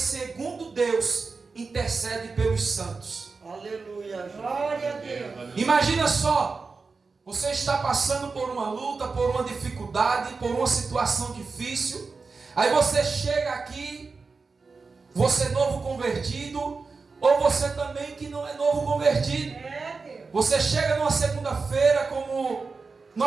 Deus, intercede pelos santos. Aleluia. Glória a Deus. Aleluia. Imagina só, você está passando por uma luta, por uma dificuldade, por uma situação difícil, aí você chega aqui, você é novo convertido, ou você também que não é novo convertido. É Deus. Você chega numa segunda-feira, como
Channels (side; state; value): left; quieter; 4.4 dB